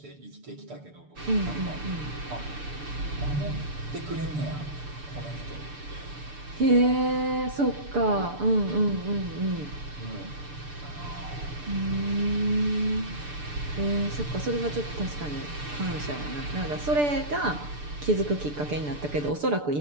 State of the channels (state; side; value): late; left; 6.8 ms